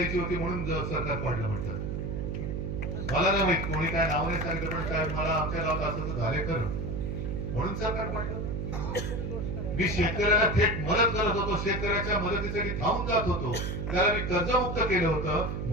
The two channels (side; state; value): right; noise; hum, 3 dB below the sound